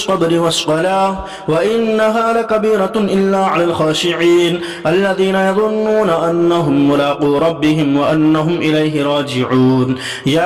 والصلاة وإنها لكبيرة إلا على الخاشعين الذين يظنون أنهم ملاقو ربهم وأنهم إليه راجعون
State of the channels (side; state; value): both; identical; correlation 1.00